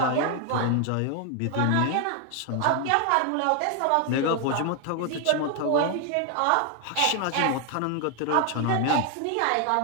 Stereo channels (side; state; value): both; different; correlation 0.00